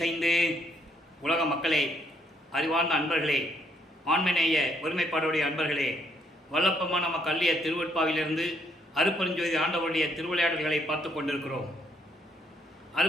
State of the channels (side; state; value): both; normal; correlation 0.70